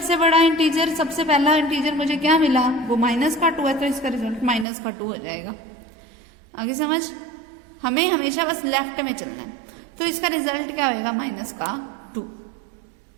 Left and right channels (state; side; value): drops out; left; at 4.7 s